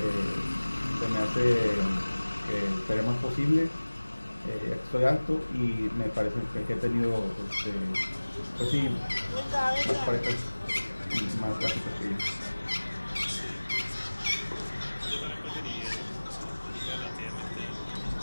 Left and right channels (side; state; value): both; inverted; correlation -1.00